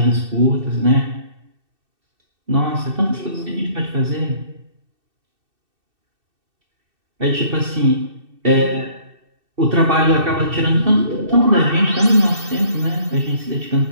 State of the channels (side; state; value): left; late; 2.6 ms